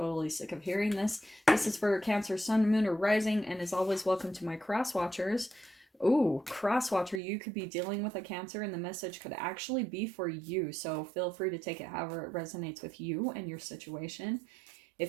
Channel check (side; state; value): left; drops out; at 7.2 s